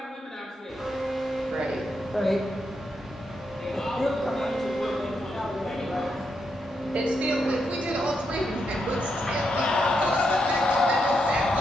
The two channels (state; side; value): normal; both; correlation 0.82